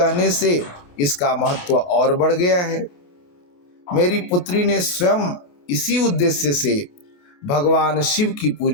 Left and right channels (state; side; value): late; right; 28 ms